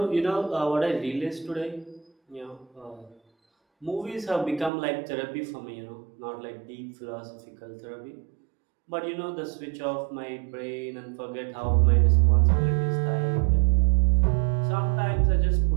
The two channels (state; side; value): drops out; left; at 4.7 s